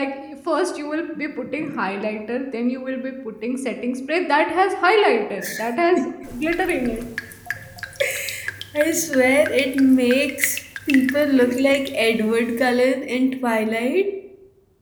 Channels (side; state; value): both; identical; correlation 1.00